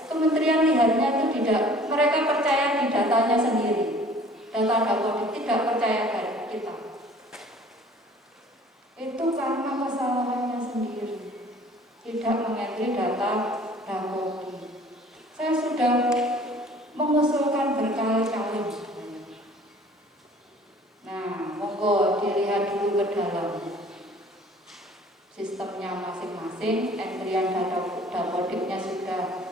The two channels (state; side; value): normal; both; correlation 0.51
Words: kementerian lihatnya itu tidak, mereka percaya di datanya sendiri. Data Dapodik tidak percaya dari kita. Itu karena kesalahannya sendiri, tidak mengentri data Dapodik. Saya sudah mengusulkan berkali-kali. Nah, monggo dilihat dulu ke dalam sistemnya masing-masing, entrian data Dapodiknya